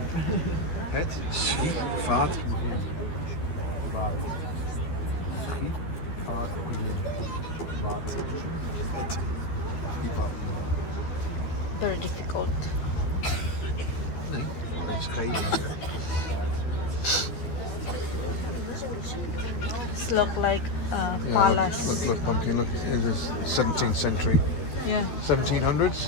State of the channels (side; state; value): right; late; 13 ms